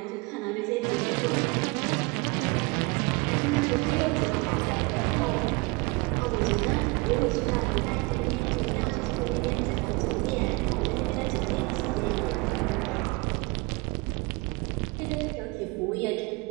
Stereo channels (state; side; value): quieter; left; 26.7 dB